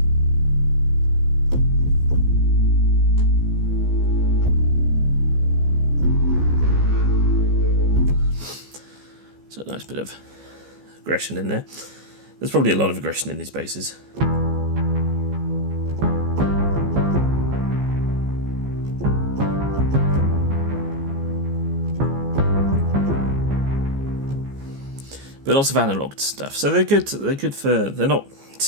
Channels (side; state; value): left; late; 15 ms